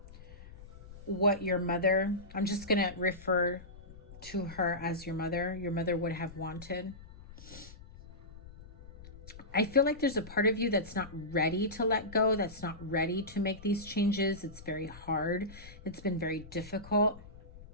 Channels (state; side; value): noise; left; rumble, 18 dB below the sound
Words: what your mother, I'm just going to refer to her as your mother would have wanted. I feel like there's a part of you that's not ready to let go, that's not ready to make these changes. It's very hard. It's been very difficult.